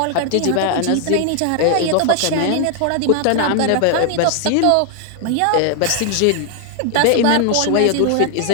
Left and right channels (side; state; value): both; different; correlation 0.00